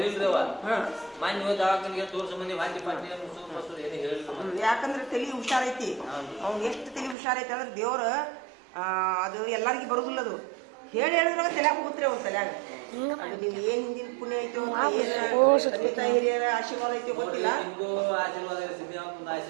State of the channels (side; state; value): left; drops out; at 7.2 s